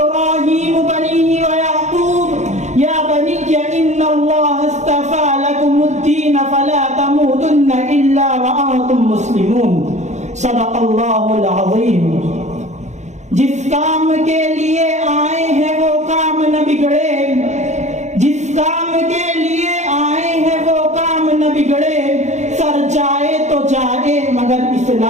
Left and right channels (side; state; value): left; late; 0.34 ms